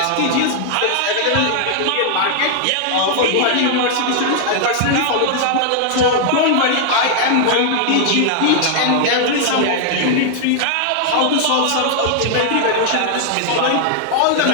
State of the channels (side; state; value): both; different; correlation 0.00